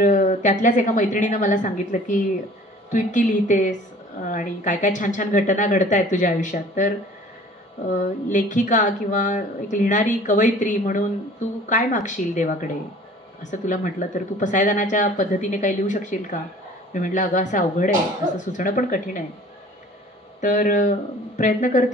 त्यातल्याच एका मैत्रिणीनं मला सांगितलं की तू इतकी लिहितेस आणि काय काय छान छान घटना घडत आहेत तुझ्या आयुष्यात, तर लेखिका किंवा एक लिहिणारी कवयित्री म्हणून तू काय मागशील देवाकडे, असं तुला म्हटलं तर तू पसायदानाच्या पद्धतीने काही लिहू शकशील का. मी म्हटलं अगं असं अवघड आहे, असं सुचणं पण कठीण आहे. तर प्रयत्न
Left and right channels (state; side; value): normal; both; correlation 0.49